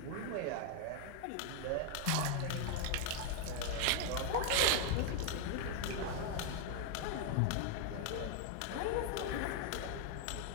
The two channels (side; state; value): both; different; correlation 0.00